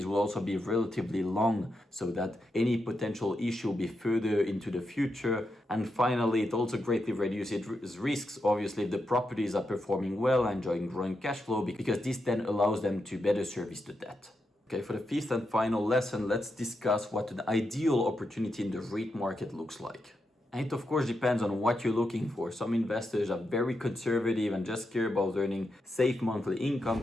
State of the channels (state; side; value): normal; both; correlation 0.85